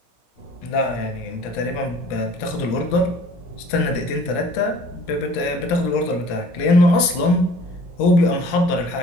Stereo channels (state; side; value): late; right; 17 ms